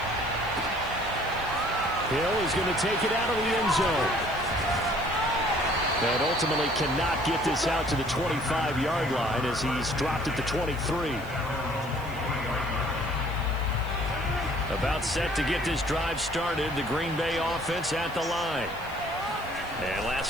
Hill is going to take it out of the end zone. And ultimately cannot get this out to the 25-yard line as he's dropped at the 23. About set to get this drive started, the Green Bay offense at the line. And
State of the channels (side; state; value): left; noise; hiss, 23 dB below the sound